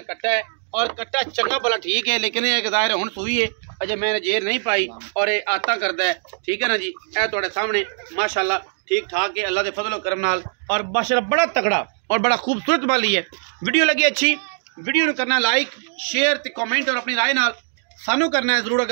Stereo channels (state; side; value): silent; left; 64 dB below the other